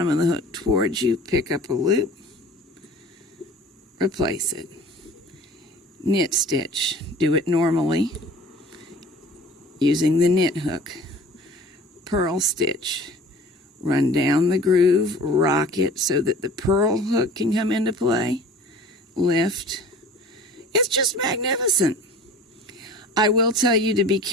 of the hook towards you, pick up a loop, replace it. Knit stitch. Do it normally using the knit hook. Purl stitch. Run down the groove, rock it so that the purl hook can come into play. Lift. It's just magnificent. I will tell you to be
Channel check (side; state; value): both; normal; correlation 0.44